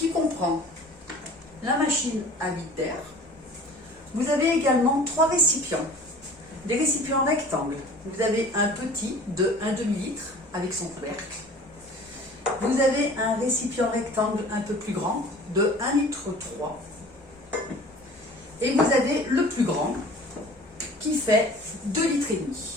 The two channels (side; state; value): both; normal; correlation 0.45